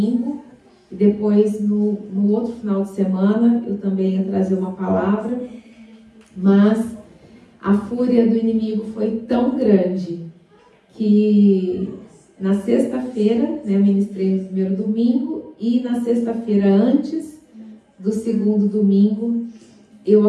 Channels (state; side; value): identical; both; correlation 1.00